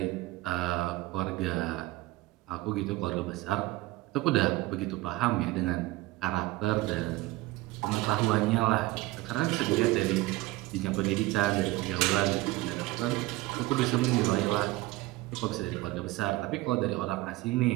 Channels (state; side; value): quieter; left; 18.9 dB